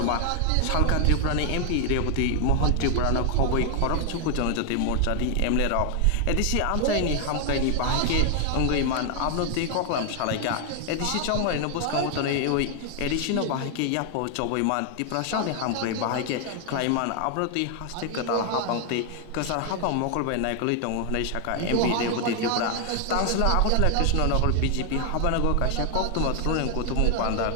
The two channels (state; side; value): different; both; correlation 0.00